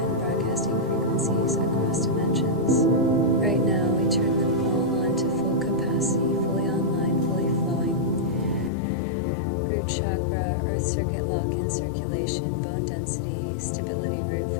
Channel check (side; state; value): right; drops out; at 8.7 s